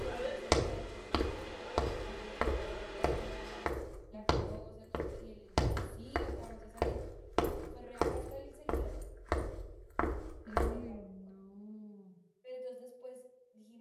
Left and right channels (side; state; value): both; identical; correlation 1.00